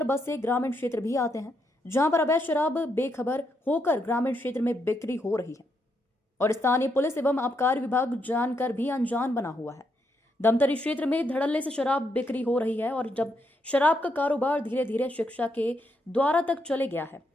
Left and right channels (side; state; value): both; normal; correlation 0.79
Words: बसे ग्रामीण क्षेत्र भी आते हैं, जहां पर अवैध शराब बेखबर होकर ग्रामीण क्षेत्र में बिक्री हो रही है और स्थानीय पुलिस एवं आबकारी विभाग जानकर भी अनजान बना हुआ है। धमतरी क्षेत्र में धड़ल्ले से शराब बिक्री हो रही है और जब शराब का कारोबार धीरे धीरे शिक्षा के द्वारा तक चले गया है,